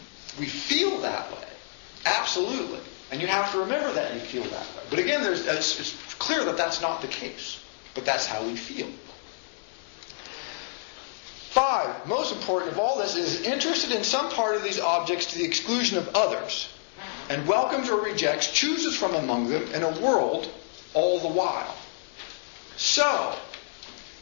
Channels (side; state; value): right; silent; digital silence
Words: We feel that way. Absolutely. And you have to remember that you feel that way. But again, it's clear that that's not the case. But that's how we feel. 5, most important of all this, is interested in some part of these objects to the exclusion of others, and welcomes or rejects, chooses from among them in a world all the while. So,